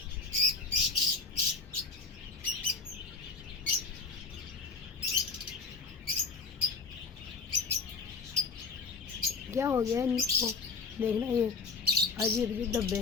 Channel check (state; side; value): quieter; right; 4.4 dB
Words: क्या हो गया इनको, देखना ये अजीब अजीब धब्बे,